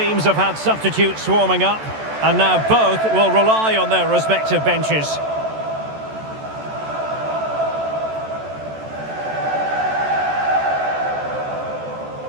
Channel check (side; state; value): left; late; 14 ms